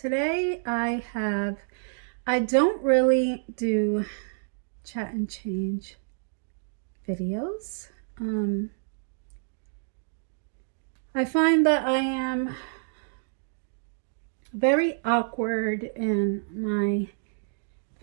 I don't really do chat and change videos. I find that I am very awkward in my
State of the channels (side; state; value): left; silent; digital silence